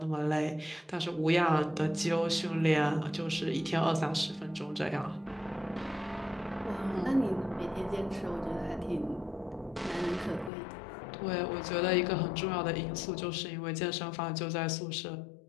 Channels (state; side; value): drops out; right; at 10.5 s